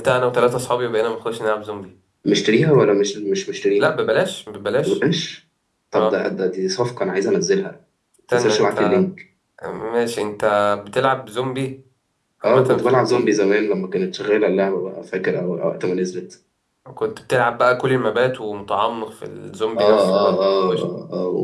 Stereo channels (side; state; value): both; identical; correlation 1.00